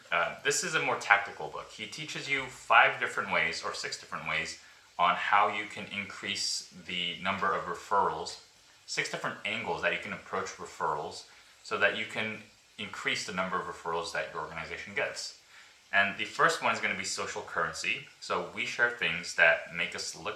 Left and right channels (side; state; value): both; identical; correlation 1.00